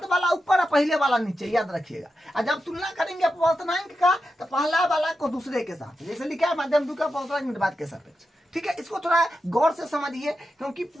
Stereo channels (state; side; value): normal; both; correlation 0.89